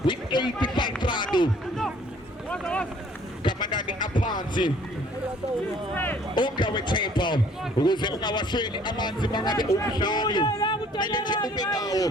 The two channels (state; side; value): normal; both; correlation 0.57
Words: with 85 rand. Kamanani aphansi. Ongawe tempo ukuze ungawasweli amanzi mangabe umdlali. Mele nje ube nawo.